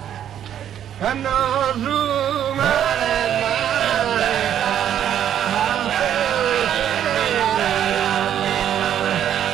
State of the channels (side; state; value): left; quieter; 10.1 dB